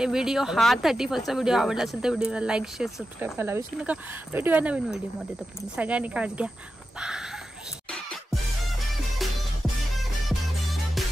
व्हिडिओ हा 31st व्हिडिओ आवडला असेल तर व्हिडिओला लाईक शेअर सबस्क्राईब करायला विसरू नका. भेटूया नवीन व्हिडिओमध्ये. तर सगळ्यांनी काळजी घ्या. बाय.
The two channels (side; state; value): both; normal; correlation 0.91